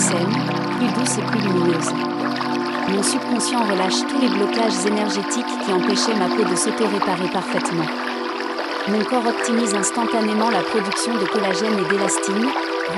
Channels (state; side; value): identical; both; correlation 1.00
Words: plus douce et plus lumineuse. Mon subconscient relâche tous les blocages énergétiques qui empêchaient ma peau de s'auto-réparer parfaitement. Mon corps optimise instantanément la production de collagène et d'élastine,